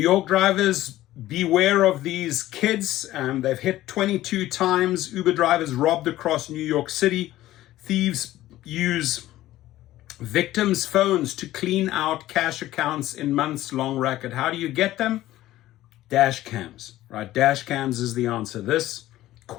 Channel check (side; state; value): right; quieter; 15.1 dB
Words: drivers, beware of these kids. They've hit 22 times. Uber drivers robbed across New York City. Thieves use victims' phones to clean out cash accounts in months-long racket. How do you get them? Dash cams, right? Dash cams is the answer. This